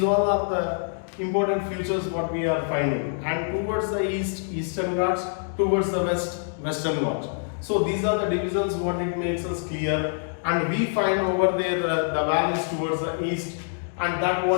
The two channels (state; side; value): silent; right; digital silence